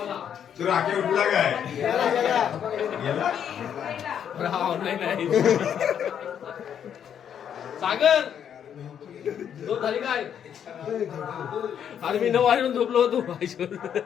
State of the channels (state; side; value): quieter; right; 8.8 dB